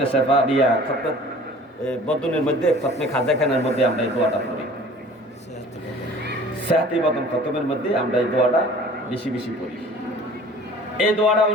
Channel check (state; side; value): normal; both; correlation 0.47